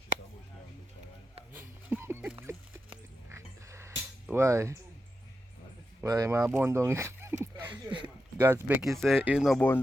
Why? Why my bun down? God's Becky say you no bun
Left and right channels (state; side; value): normal; both; correlation 0.88